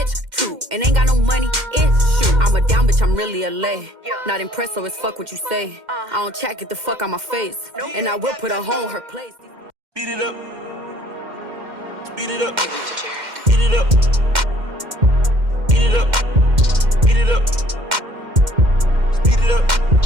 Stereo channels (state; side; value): late; left; 2.1 ms